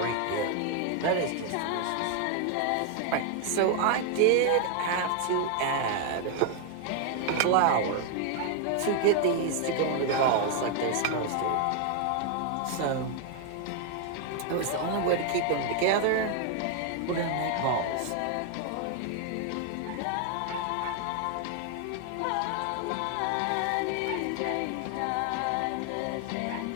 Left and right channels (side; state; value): both; different; correlation 0.00